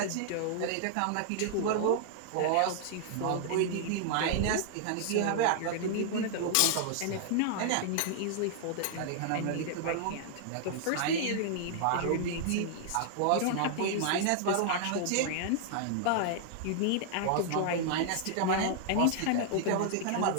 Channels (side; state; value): both; different; correlation -0.01